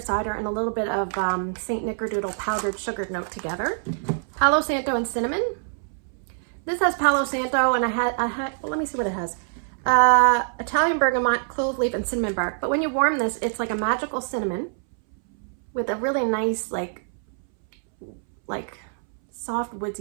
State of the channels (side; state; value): left; silent; 62 dB below the other